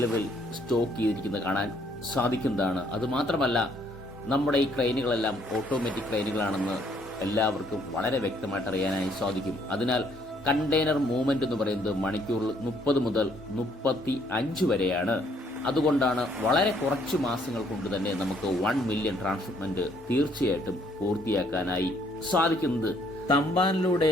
സ്റ്റോക്ക് ചെയ്തിരിക്കുന്നത് കാണാൻ സാധിക്കുന്നതാണ്. അതുമാത്രമല്ല, നമ്മുടെ ഈ ക്രെയിനുകളെല്ലാം ഓട്ടോമാറ്റിക് ക്രെയിനുകളാണെന്ന് എല്ലാവർക്കും വളരെ വ്യക്തമായിട്ട് അറിയാനായി സാധിക്കും. അതിനാൽ കണ്ടെയ്നർ മൂവ്മെന്റ് എന്ന് പറയുന്നത് മണിക്കൂറിൽ 30 മുതൽ 35 വരെയാണ്. അതുകൊണ്ടാണ് വളരെ കുറച്ച് മാസങ്ങൾ കൊണ്ട് തന്നെ നമുക്ക് 1 മില്യൺ ട്രാൻസ്ഷിപ്മെന്റ് തീർച്ചയായിട്ടും പൂർത്തിയാക്കാനായി സാധിക്കുന്നത്. തമ്പാനിലൂടെ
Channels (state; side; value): normal; both; correlation 0.66